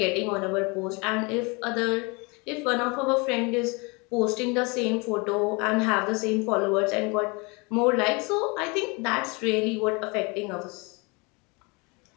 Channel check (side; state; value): right; quieter; 28.7 dB